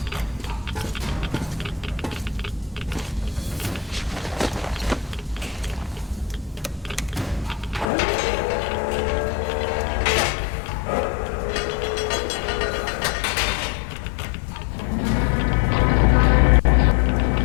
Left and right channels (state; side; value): drops out; right; at 7.9 s